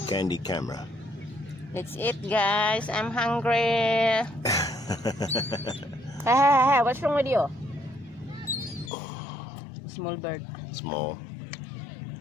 Candy Camera. That's it, guys. I'm hungry. Hey, what's wrong with you? Small bird. Small.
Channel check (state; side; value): drops out; right; at 8.9 s